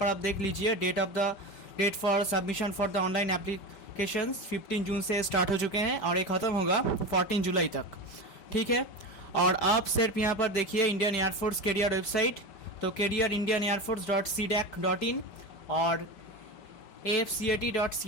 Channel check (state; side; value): late; right; 5.1 ms